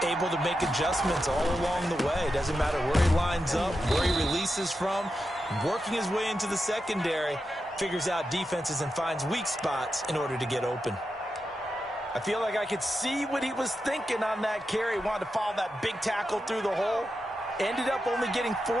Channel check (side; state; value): both; normal; correlation 0.89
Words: Able to make adjustments all along the way. Doesn't matter where he lines up, where he releases from. Working his way into the secondary, figures out defenses and finds weak spots in order to get open. I feel like I could see what he was thinking on that carry. Wanted to follow that big tackle through the hole. Ended up only getting